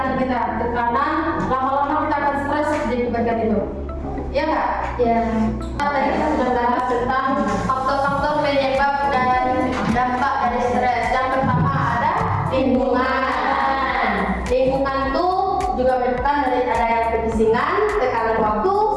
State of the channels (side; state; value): both; identical; correlation 1.00